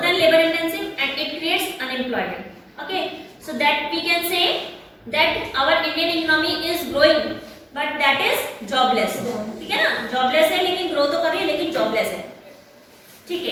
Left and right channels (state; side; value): identical; both; correlation 1.00